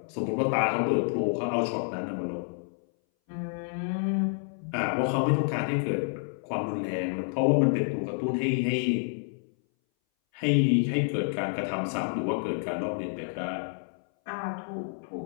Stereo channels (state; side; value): silent; right; 59 dB below the other